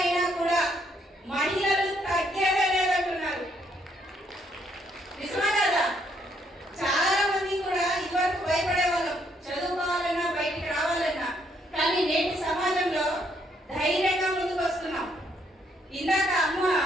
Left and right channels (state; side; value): normal; both; correlation 0.71